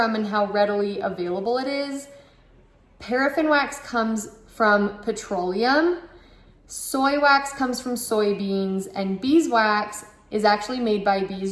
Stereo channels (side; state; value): both; identical; correlation 1.00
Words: and how readily available it is. Paraffin wax comes from petroleum. Soy wax comes from soybeans, and beeswax is actually made by